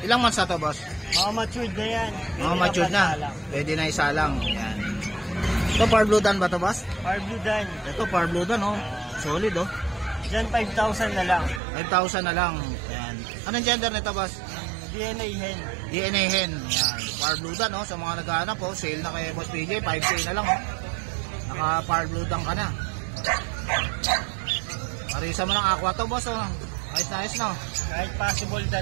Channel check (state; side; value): drops out; left; at 11.6 s